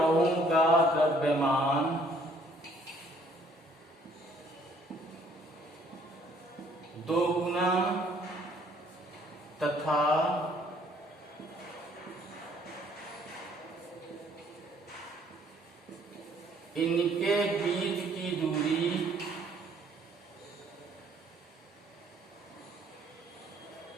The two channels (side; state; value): both; normal; correlation 0.61